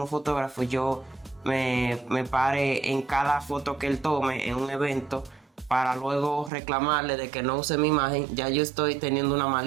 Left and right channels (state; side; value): drops out; left; at 6.5 s